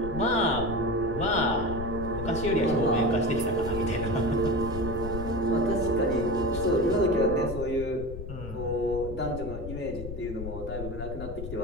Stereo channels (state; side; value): noise; left; rumble, 8 dB below the sound